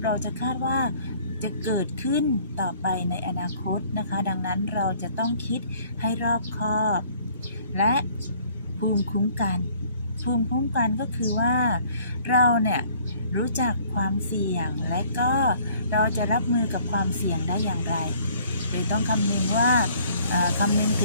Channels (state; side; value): inverted; both; correlation -0.57